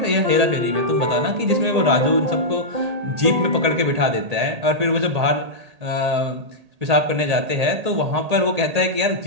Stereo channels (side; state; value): left; late; 1.8 ms